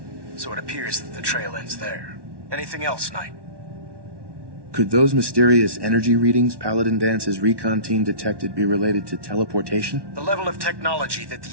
so it appears that the trail ends there. Anything else, Knight? Could those mysterious energy readings Paladin Dance's recon team detected be related to teleportation? The level of technology that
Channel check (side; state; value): left; late; 1.1 ms